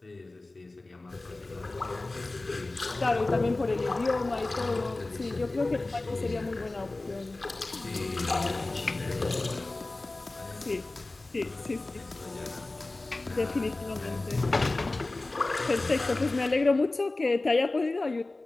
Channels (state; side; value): quieter; right; 3.0 dB